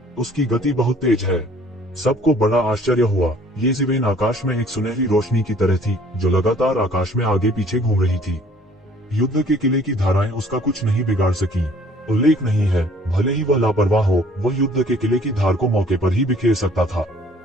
उसकी गति बहुत तेज है। सबको बड़ा आश्चर्य हुआ। ये ज़िवेन आकाश में एक सुनहरी रोशनी की तरह थी जो लगातार आकाश में आगे पीछे घूम रही थी। युद्ध के किले की धाराएं उसका कुछ नहीं बिगाड़ सकी। उल्लेख नहीं है, भले ही वह लापरवाह हो, वह युद्ध के किले की धार को मौके पर ही बिखेर सकता था।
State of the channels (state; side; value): normal; both; correlation 0.56